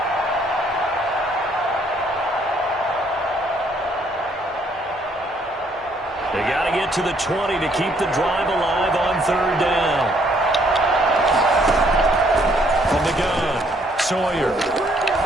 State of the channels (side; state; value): both; normal; correlation 0.67